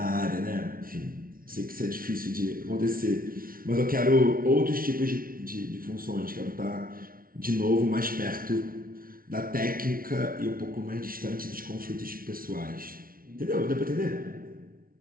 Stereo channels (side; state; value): left; late; 0.42 ms